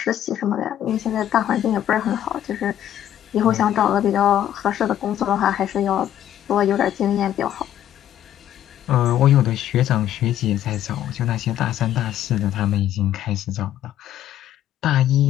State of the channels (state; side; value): quieter; right; 11.5 dB